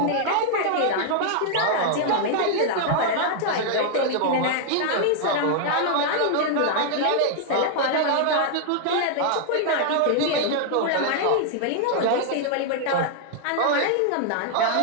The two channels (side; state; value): both; different; correlation 0.00